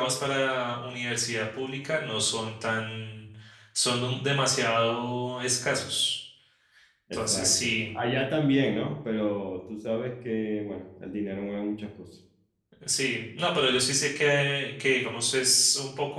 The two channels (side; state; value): both; identical; correlation 1.00